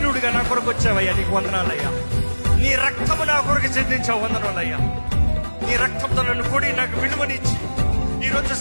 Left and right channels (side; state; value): both; inverted; correlation -1.00